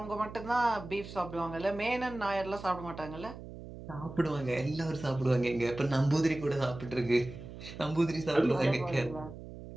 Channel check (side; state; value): right; noise; hum, 13 dB below the sound